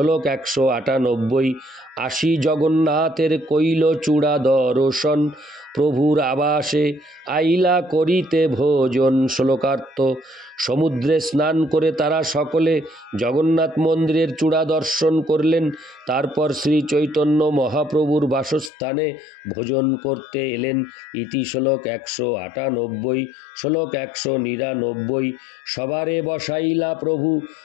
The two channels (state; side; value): drops out; right; at 18.7 s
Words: 198। আসি জগন্নাথের কইল চূড়া দর্শন, প্রভুর আবাসে আইলা করিতে ভোজন। শ্লোকার্থ। সমুদ্রে স্নান করে তারা সকলে জগন্নাথ মন্দিরের চূড়া দর্শন করলেন। তারপর শ্রী চৈতন্য মহাপ্রভুর বাসস্থানে ভোজন করতে এলেন। ইতি শ্লোক 198। শ্লোক 199। সবারে বসাইলা প্রভু